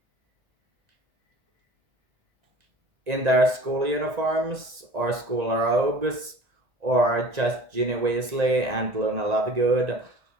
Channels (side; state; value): left; late; 1.9 ms